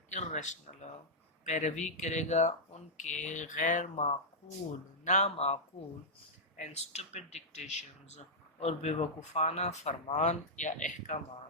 irrational پیروی کرے گا ان کے غیر معقول نامعقول and stupid dictations اور بے وقوفانہ فرمان یا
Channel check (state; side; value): normal; both; correlation -0.08